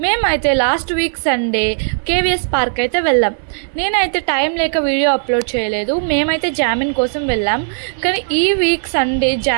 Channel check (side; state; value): left; silent; 58 dB below the other